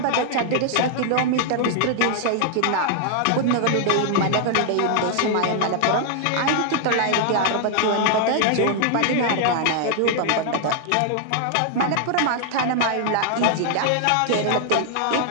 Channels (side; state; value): both; different; correlation 0.00